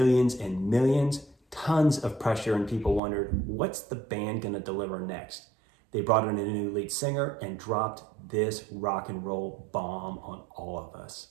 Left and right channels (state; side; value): drops out; left; at 3.0 s